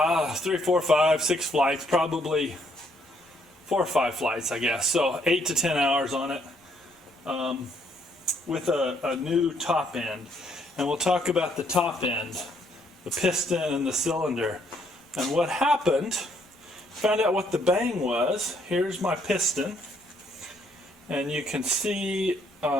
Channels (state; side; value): normal; both; correlation 0.69